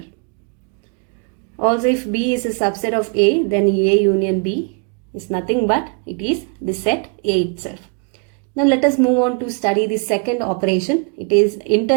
Also, if B is a subset of A, then A union B is nothing but it is the set A itself. Now let us move on to study the second operation. It is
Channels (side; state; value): left; quieter; 34.9 dB